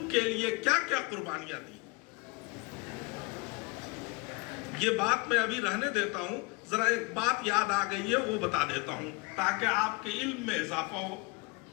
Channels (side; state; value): right; quieter; 26.5 dB